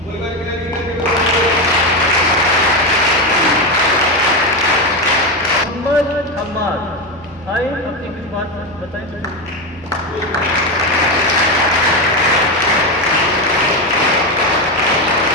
मोहम्मद हमाद आए, अपनी कुछ बात बताएं।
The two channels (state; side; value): normal; both; correlation 0.13